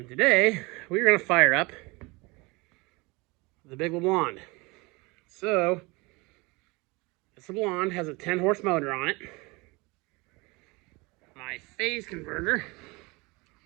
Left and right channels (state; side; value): quieter; left; 25.5 dB